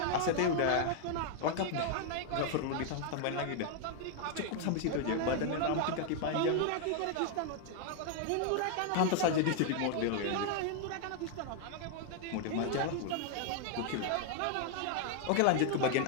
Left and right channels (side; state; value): both; different; correlation 0.00